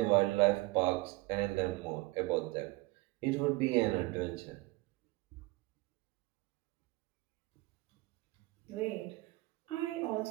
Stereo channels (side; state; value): left; quieter; 21.9 dB